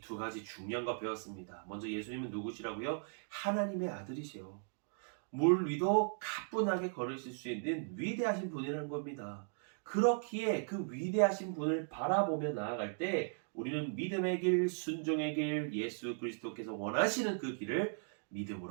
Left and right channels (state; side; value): silent; left; 53 dB below the other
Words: 두 가지 중요한 거 배웠습니다. 먼저 예수님은 누구시라고요? 하나님의 아들이시요. 물 위도 가뿐하게 걸으실 수 있는 위대하신 분이라는 겁니다. 그렇기에 그 위대하신 분을 바라보며 나아갈 때 우리는 믿음의 길, 순종의 길, 예수 그리스도께서 원하시는 그 길을